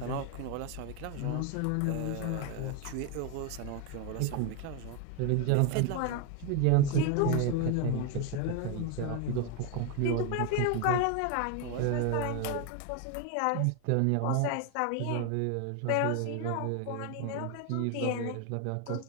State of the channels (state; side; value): different; both; correlation 0.01